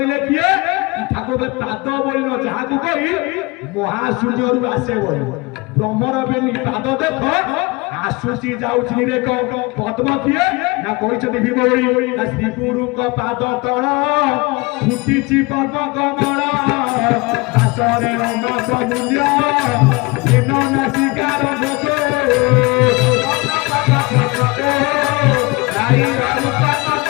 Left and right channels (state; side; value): quieter; right; 25.4 dB